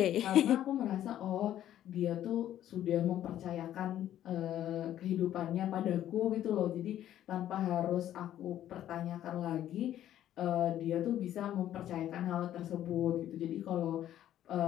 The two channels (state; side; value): quieter; right; 11.9 dB